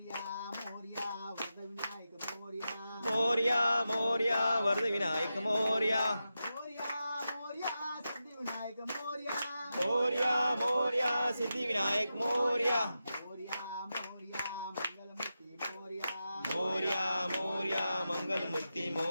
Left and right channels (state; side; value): inverted; both; correlation -0.90